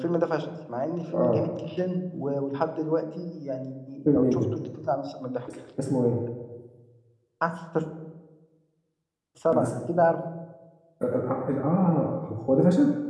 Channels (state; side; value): identical; both; correlation 1.00